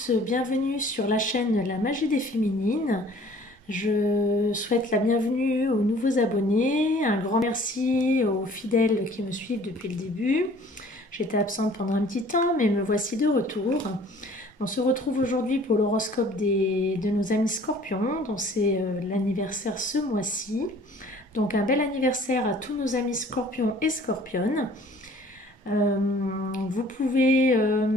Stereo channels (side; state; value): both; normal; correlation 0.52